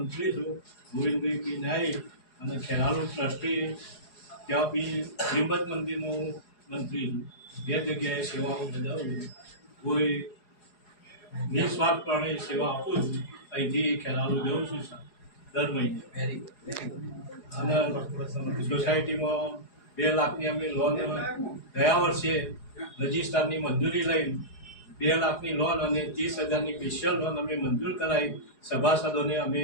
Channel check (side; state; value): right; late; 4.8 ms